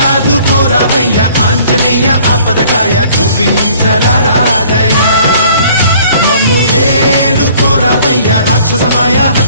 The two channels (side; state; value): both; inverted; correlation -0.55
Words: ఆంజనేయ ఆపదగాయ చూపించరాదయ మమ్ము ఏలుకోరావయ్య రాక్షసమాయ